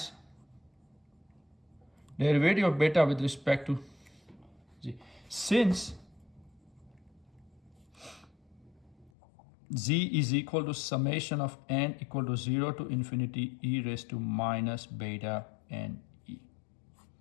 derivative of beta with respect to Z. Since Z is equal to summation of n equal to 0 to infinity e raised to minus beta n e.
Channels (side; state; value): right; drops out; at 9.1 s